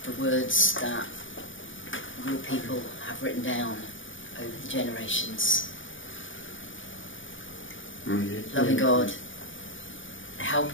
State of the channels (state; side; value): late; right; 0.57 ms